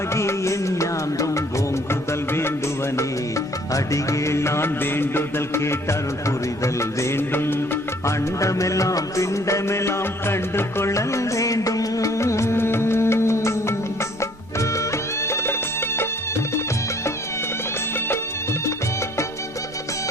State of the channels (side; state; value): both; normal; correlation 0.58